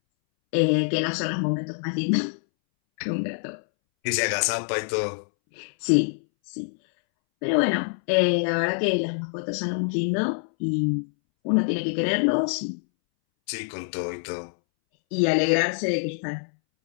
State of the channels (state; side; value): silent; right; 62 dB below the other